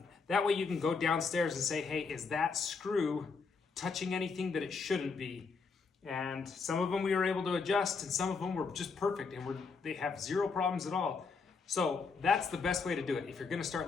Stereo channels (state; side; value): quieter; right; 4.9 dB